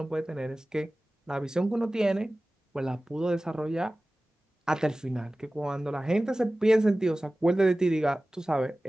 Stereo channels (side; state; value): both; normal; correlation 0.97